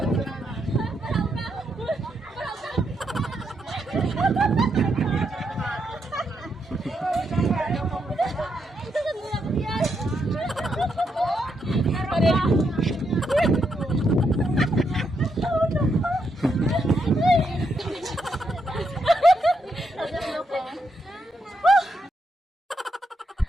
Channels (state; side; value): normal; both; correlation 0.80